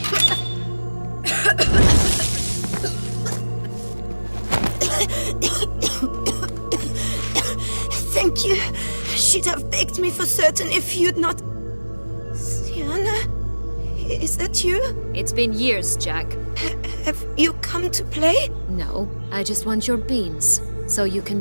Thank you. She'd have begged me for certain if you'd not... Sierra? Is that you? It's been years, Jack. Have you come to play? No, I just want your beans, so you can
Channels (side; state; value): both; inverted; correlation -1.00